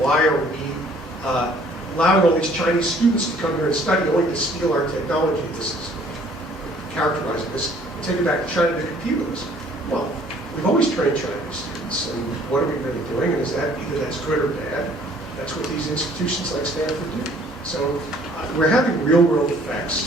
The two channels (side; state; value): both; normal; correlation 0.58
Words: are we allowing all these Chinese students to come here and study only to steal our technology? This is characterizing this. Take it back to China to compete with us. Well, we've always trained Chinese students, and what are we really doing? And is that either that's good or bad? That's what these institutions like Stanford do. So we're having real-world